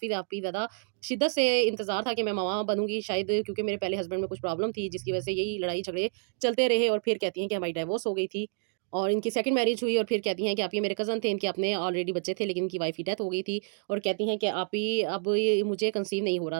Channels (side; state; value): left; silent; digital silence